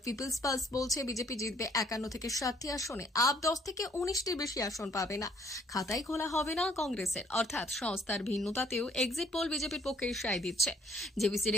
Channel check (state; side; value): normal; both; correlation 0.64